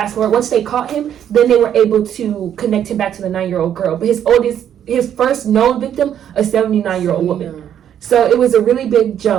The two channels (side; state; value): left; quieter; 9.8 dB